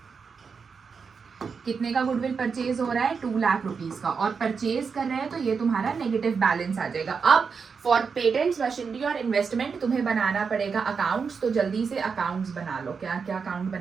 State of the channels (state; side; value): quieter; left; 5.6 dB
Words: कितने का गुडविल परचेज हो रहा है, 2 लाख रुपीज का, और परचेज कर रहे हैं तो ये तुम्हारा नेगेटिव बैलेंस आ जाएगा। अब फॉर पेटेंट्स, मशीनरी और इन्वेस्टमेंट तुम्हें बनाना पड़ेगा अकाउंट्स, तो जल्दी से अकाउंट्स बना लो। क्या क्या अकाउंट